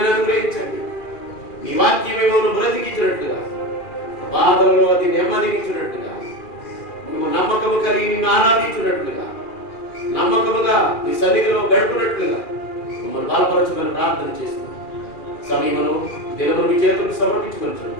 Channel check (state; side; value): late; right; 2.4 ms